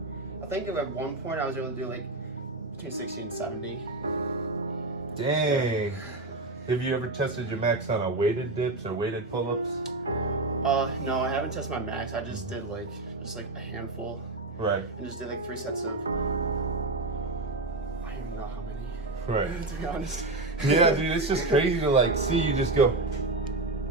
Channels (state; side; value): quieter; left; 3.0 dB